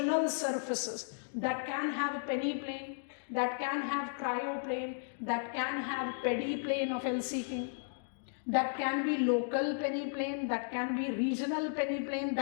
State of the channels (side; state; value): right; silent; digital silence